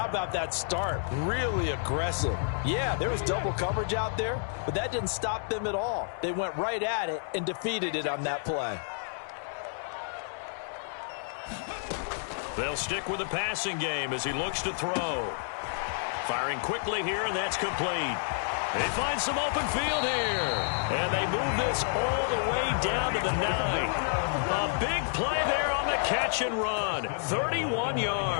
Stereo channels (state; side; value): silent; right; digital silence